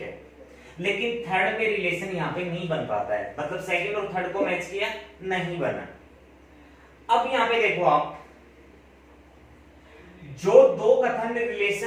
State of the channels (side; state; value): both; identical; correlation 1.00